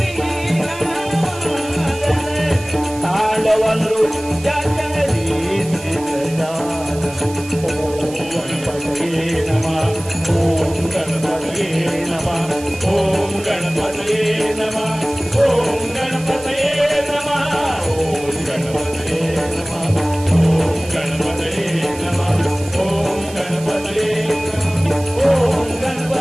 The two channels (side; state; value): right; noise; hiss, 16 dB below the sound